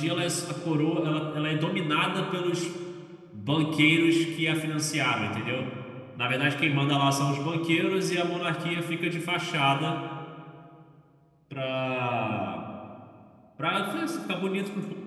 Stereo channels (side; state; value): both; identical; correlation 1.00